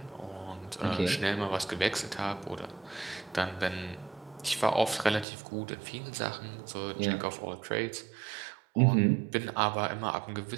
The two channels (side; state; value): left; drops out; at 5.2 s